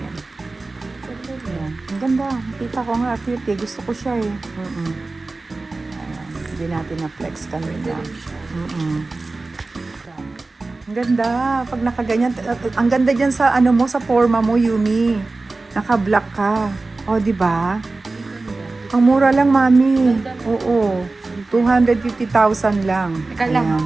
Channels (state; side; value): quieter; left; 3.4 dB